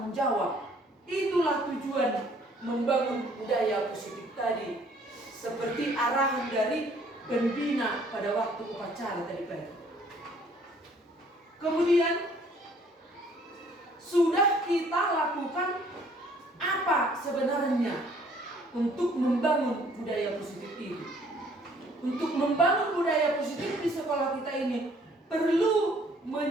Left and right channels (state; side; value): normal; both; correlation 0.60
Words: jawab. Itulah tujuan membangun budaya positif tadi, seperti arahan dari pembina pada waktu upacara tadi pagi. Kemudian sudah kita lakukan apa sebenarnya untuk membangun budaya positif ini? Untuk membangun budaya positif di sekolah kita ini perlu